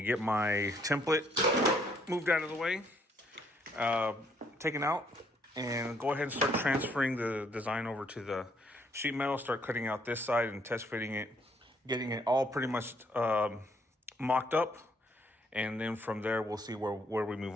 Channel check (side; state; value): both; normal; correlation 0.68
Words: get my template moved out of the way, taken out, and go ahead and start transferring the design over to the sheet metal, start cutting out this side and test fitting it, getting it all pretty much mocked up, and then from there we'll see where we